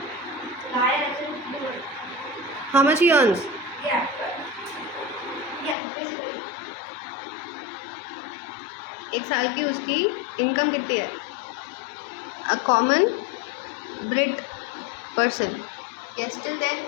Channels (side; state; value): right; drops out; at 5.8 s